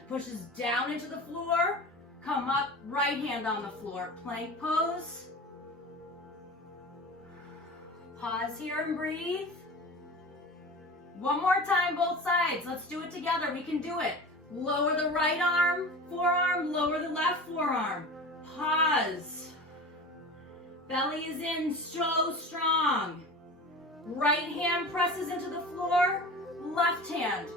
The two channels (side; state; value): both; normal; correlation 0.34